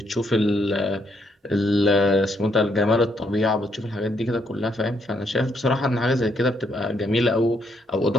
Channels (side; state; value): both; normal; correlation 0.74